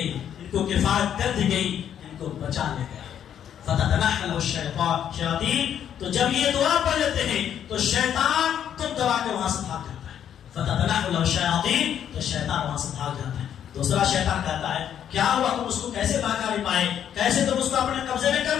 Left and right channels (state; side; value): quieter; right; 9.5 dB